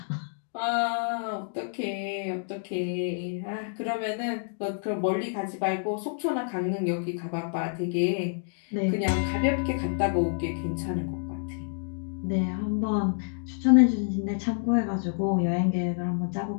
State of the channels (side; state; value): right; silent; digital silence